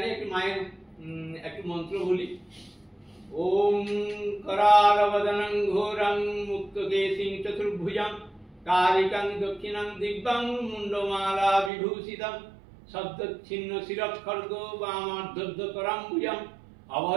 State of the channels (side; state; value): left; drops out; at 11.7 s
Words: একটু মায়ের একটু মন্ত্র বলি। ওম करालवदनं घोरं मुक्तकेशिं चतुर्भुजं कालिकं दक्षिणं दिव्यं मुण्डमाला विभूषितं शब्दच्छिन्न शिरःखड्गो वामार्धद्वकराम्बुजं